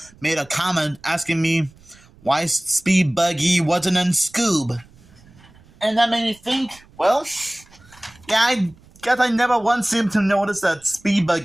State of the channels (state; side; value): noise; right; rumble, 27 dB below the sound